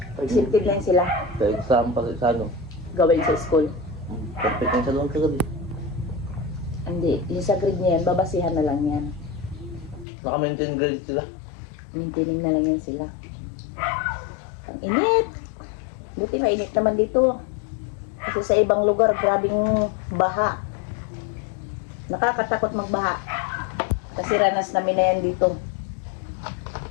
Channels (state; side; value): drops out; right; at 10.1 s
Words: Accepted lang sila. Sa exam pa sa ano. Gawin sa school. Perfect lang sa doon kagabi. Hindi. Yung sa grade niya yan, babasihan na lang yan. Naka-maintain grade sila. Maintaining na lang yan sila. Ang init. Buti mainit naman dito. Kasi sa ibang lugar, grabing baha. Nakakatakot magbaha. Kasi ranas namin na yan dito.